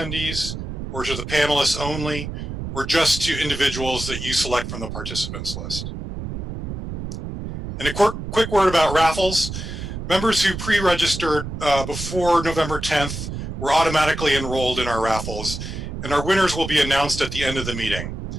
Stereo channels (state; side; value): noise; right; rumble, 7 dB below the sound